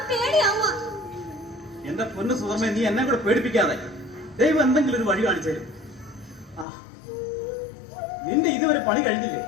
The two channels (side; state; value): right; drops out; at 6.7 s